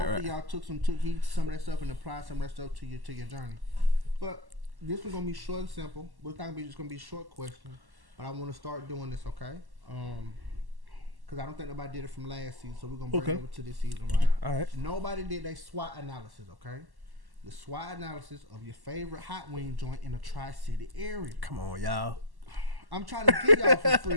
y'all took heed to some of that stuff and applied some of that stuff to your journey. But this one's gonna be short and simple. But it's not gonna be just gonna be short questions. But I want to start doing this, okay? Because I don't think nobody did it from last season, so we're gonna bring it over to this season, right? All right. Nobody did a SWOT analysis, okay? The SWOT analysis of your favorite hot wing joint in the Tri-City area. Come on, y'all. I'm trying to give y'all some free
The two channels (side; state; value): left; late; 1.1 ms